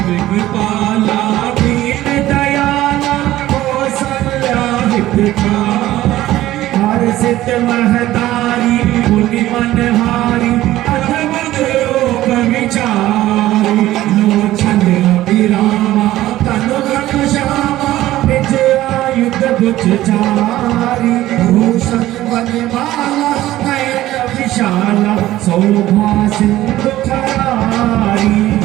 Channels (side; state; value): left; quieter; 15.1 dB